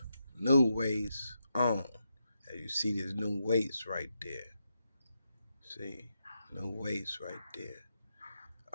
on. As you see, there's new weights right there. See, new weights right there.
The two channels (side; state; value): both; inverted; correlation -0.85